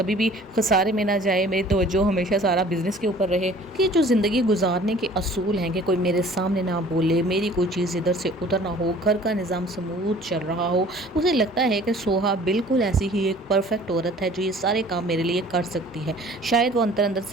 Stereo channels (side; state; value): both; normal; correlation 0.50